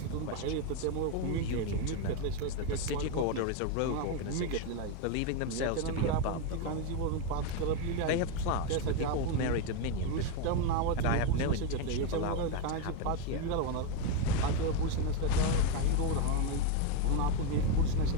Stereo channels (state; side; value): different; both; correlation 0.02